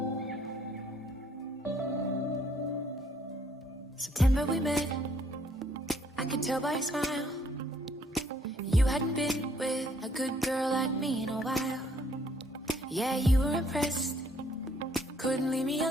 we met, I could tell by your smile. You hadn't been with a good girl like me in a while. Yeah, you were impressed, couldn't leave me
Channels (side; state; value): both; normal; correlation 0.65